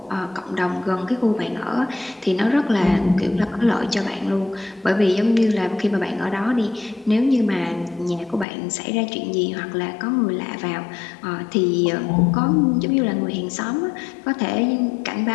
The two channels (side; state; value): right; drops out; at 8.5 s